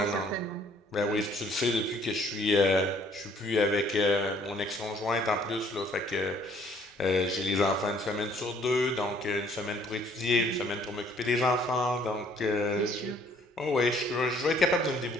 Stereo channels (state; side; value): normal; both; correlation 0.60